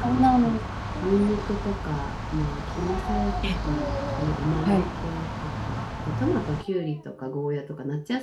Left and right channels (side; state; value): both; identical; correlation 1.00